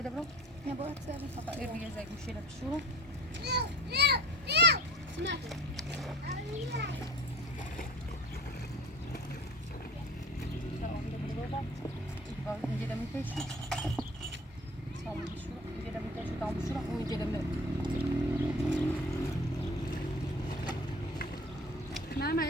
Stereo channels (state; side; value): normal; both; correlation 0.43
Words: برون نبات سری صاير ريزك مشيله بالشورى اینجا دم می‌کشی سامون شورى اینجا دم می‌کشی تام شورى اون اینجا دم ماما